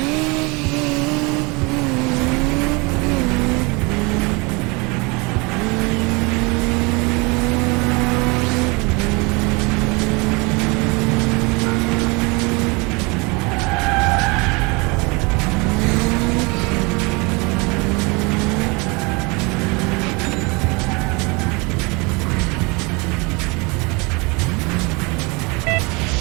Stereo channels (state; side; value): quieter; left; 27.9 dB